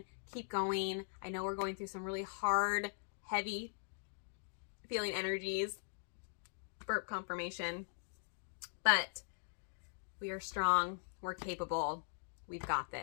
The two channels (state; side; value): silent; right; digital silence